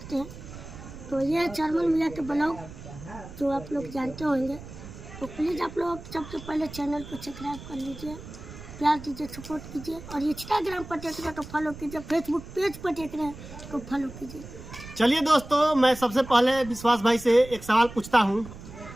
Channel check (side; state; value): right; noise; rumble, 14 dB below the sound